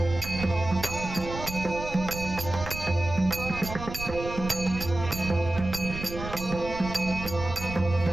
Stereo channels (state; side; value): noise; right; rumble, 9 dB below the sound